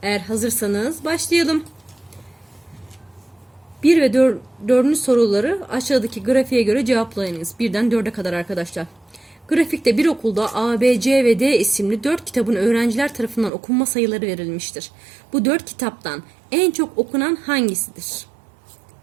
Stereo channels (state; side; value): drops out; left; at 13.5 s